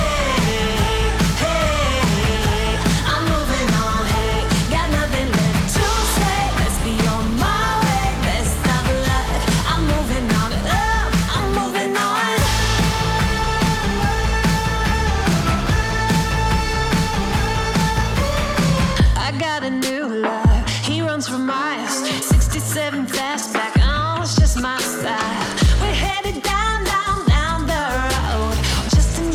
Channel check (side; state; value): both; identical; correlation 1.00